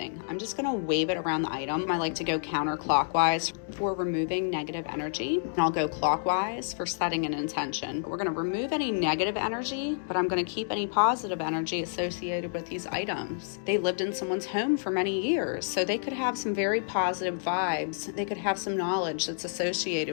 I'm just gonna wave it around the item. I like to go counterclockwise for removing negative energy. And I'll go clockwise for setting an intention. We're gonna remove any negative energy, but I'm gonna keep any positive energy associated with these items. They lived in someone's home for many years, so they could have some very positive vibes. They could have some knowledge that's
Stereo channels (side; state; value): right; silent; digital silence